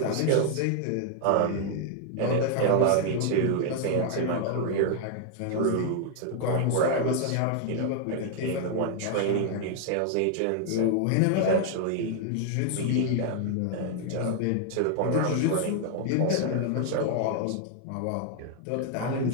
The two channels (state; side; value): different; both; correlation 0.00